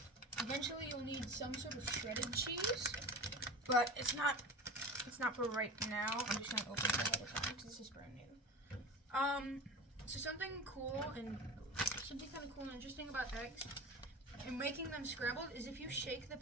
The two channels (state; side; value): normal; both; correlation 0.31